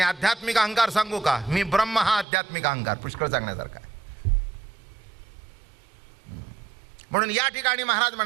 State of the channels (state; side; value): drops out; left; at 2.2 s